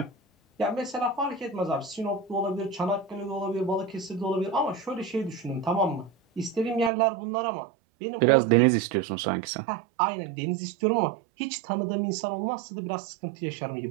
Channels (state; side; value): drops out; left; at 6.9 s